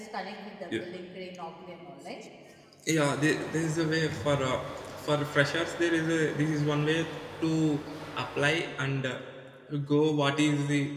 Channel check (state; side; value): identical; both; correlation 1.00